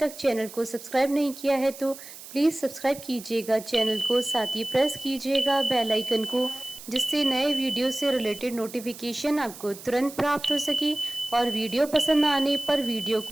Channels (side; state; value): right; noise; hiss, 15 dB below the sound